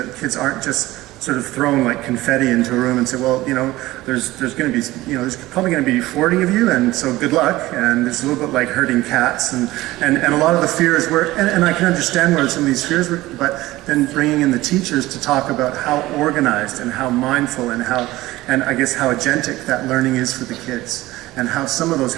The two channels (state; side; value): quieter; left; 17.8 dB